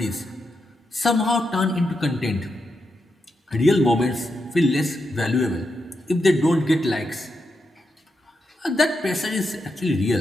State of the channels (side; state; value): both; normal; correlation 0.85